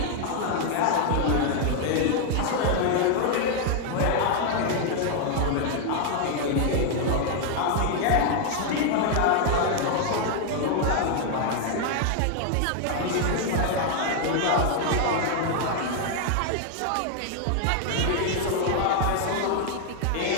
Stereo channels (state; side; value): different; both; correlation 0.00